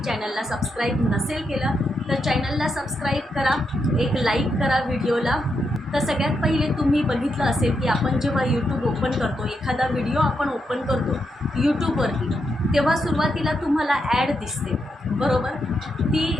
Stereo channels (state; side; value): normal; both; correlation 0.82